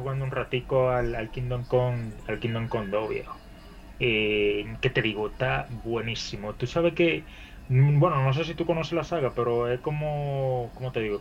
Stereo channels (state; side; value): identical; both; correlation 1.00